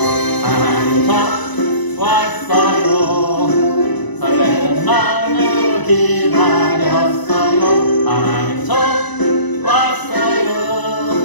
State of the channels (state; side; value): late; right; 1.0 ms